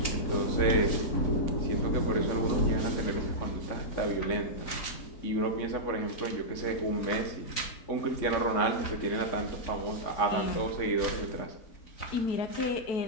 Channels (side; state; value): right; late; 4.0 ms